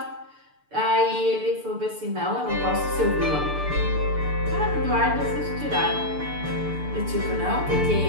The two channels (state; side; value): late; left; 6.8 ms